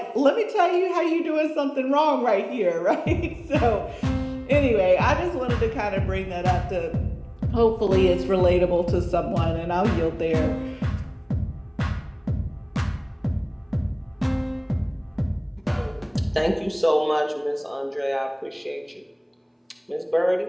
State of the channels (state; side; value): identical; both; correlation 1.00